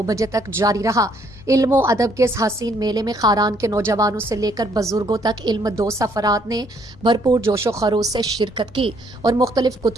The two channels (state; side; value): normal; both; correlation 0.67